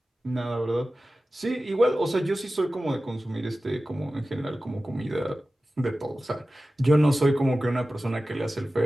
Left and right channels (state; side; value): normal; both; correlation 0.95